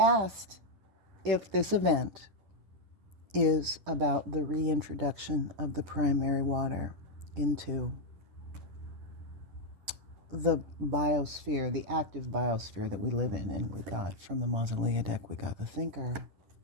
if this event is about the reintroduction of the primary water into the biosphere, the active biosphere that we live in. And we got from the Mausolea deck, we got the thinker,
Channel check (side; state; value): left; late; 10 ms